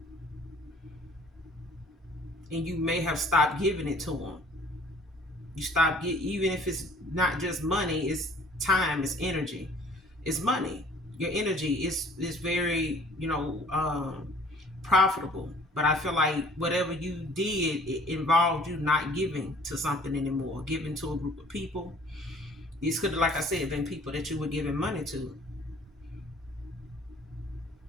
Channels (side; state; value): both; normal; correlation 0.53